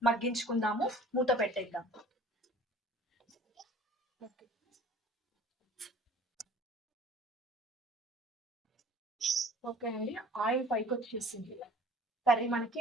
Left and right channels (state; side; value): normal; both; correlation 0.49